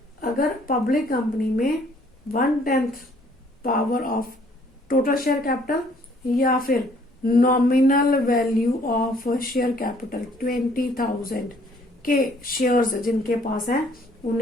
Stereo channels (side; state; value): both; normal; correlation 0.61